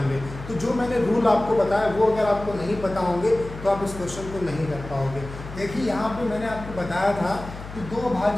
तो जो मैंने रूल आपको बताया वो अगर आपको नहीं पता होंगे तो आप इस क्वेश्चन को नहीं कर पाओगे। देखिए यहाँ पे मैंने आपको बताया था कि दो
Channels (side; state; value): left; noise; hum, 12 dB below the sound